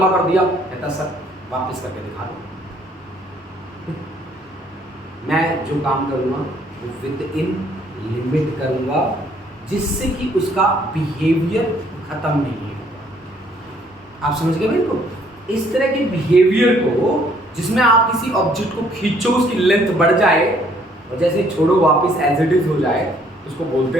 कर दिया, कहता सर वापस करके दिखा दो। मैं जो काम करूँगा वो विद इन लिमिट करूँगा, जिससे कि उसका बिहेवियर खत्म नहीं होगा। आप समझ गए मेरे को? इस तरह के बिहेवियर को जिसमें आप किसी ऑब्जेक्ट को खींचो उसकी लेंथ बढ़ जाए और जैसे छोड़ो वापस एज इट इज हो जाए, उसको बोलते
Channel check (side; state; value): both; normal; correlation 0.63